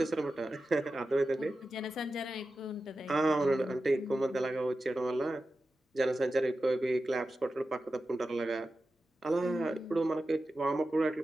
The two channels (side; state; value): both; normal; correlation 0.92